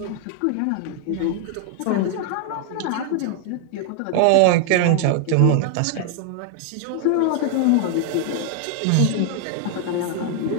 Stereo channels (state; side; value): different; both; correlation 0.00